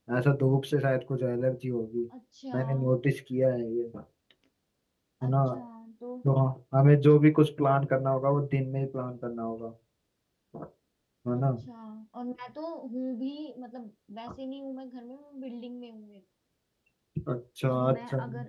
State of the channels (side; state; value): both; identical; correlation 1.00